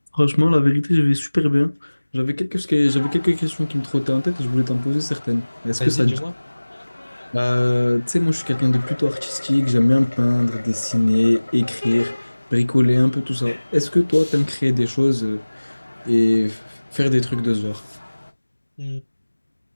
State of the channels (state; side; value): inverted; both; correlation -1.00